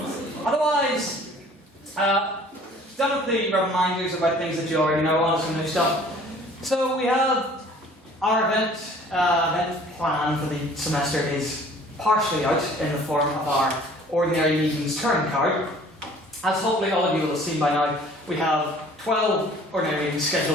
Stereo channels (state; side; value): normal; both; correlation 0.52